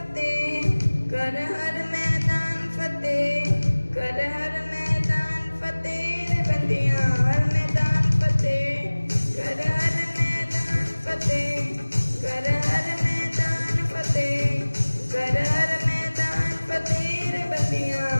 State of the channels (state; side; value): inverted; both; correlation -1.00